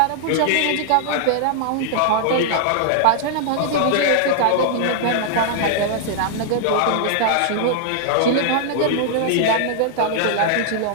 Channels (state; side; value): different; both; correlation -0.01